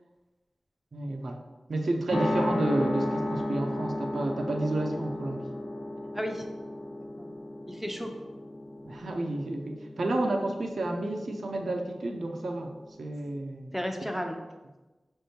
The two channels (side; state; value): both; normal; correlation 0.95